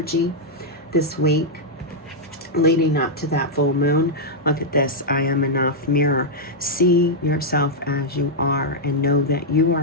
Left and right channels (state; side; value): normal; both; correlation -0.05